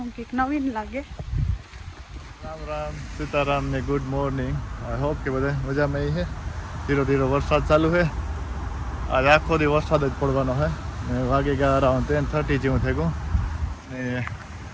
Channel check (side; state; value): both; identical; correlation 1.00